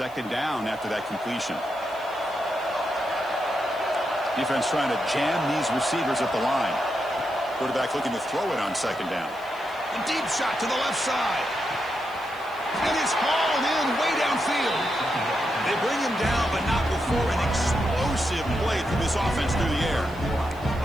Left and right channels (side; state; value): right; noise; hiss, 25 dB below the sound